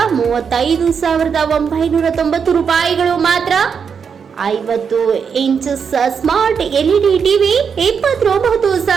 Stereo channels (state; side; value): quieter; left; 6.5 dB